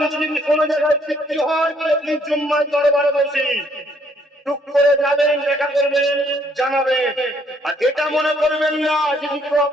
যদি কোনো জায়গায় সৃষ্টি হয় আপনি জুম্মার দরবারে বসি টুক করে যাবেন দেখা করবেন জানাবেন আর এটা মনে করবেন না যদি কেউ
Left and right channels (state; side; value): normal; both; correlation 0.67